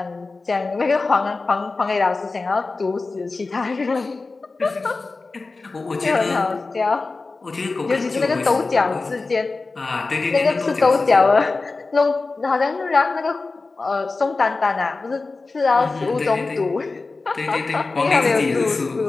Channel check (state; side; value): quieter; right; 3.7 dB